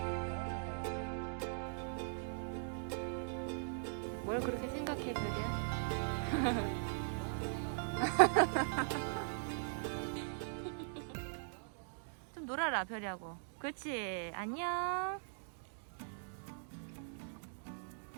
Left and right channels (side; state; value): left; silent; digital silence